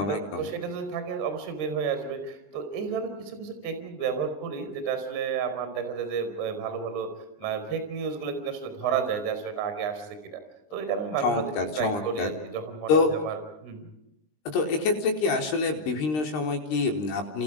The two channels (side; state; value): right; late; 20 ms